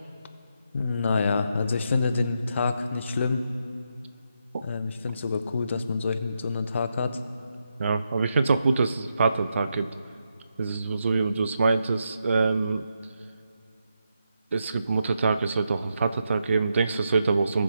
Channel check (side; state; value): both; inverted; correlation -0.83